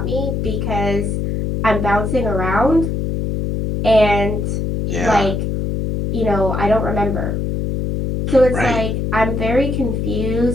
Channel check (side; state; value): left; noise; hum, 1 dB below the sound